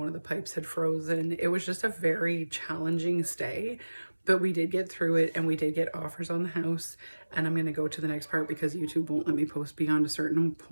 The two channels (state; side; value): inverted; both; correlation -1.00